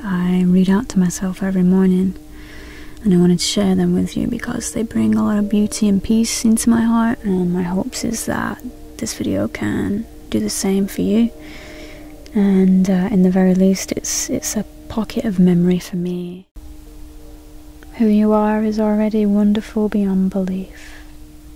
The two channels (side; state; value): both; identical; correlation 1.00